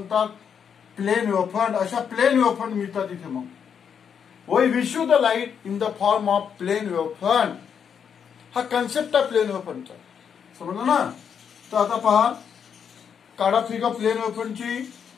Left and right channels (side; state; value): right; quieter; 7.4 dB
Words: प्लेन वेव्ह फ्रंट. अशा प्लेन वेव्ह फ्रंट मिळतात इथे. मग we receive the light in the form of plane wave front. हा कन्सेप्ट आहे प्लेन वेव्ह फ्रंटचा. समजलं ना? तर आता पहा, काढा फिगर प्लेन वेव्ह फ्रंटची.